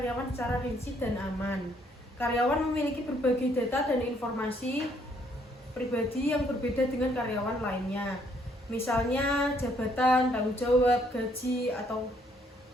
secara rinci dan aman. Karyawan memiliki berbagai data dan informasi pribadi yang berbeda dengan karyawan lainnya. Misalnya jabatan, tanggung jawab, gaji atau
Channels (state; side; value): normal; both; correlation 0.68